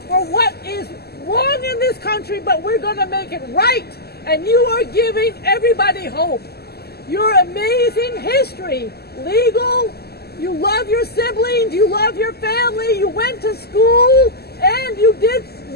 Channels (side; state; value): right; late; 0.46 ms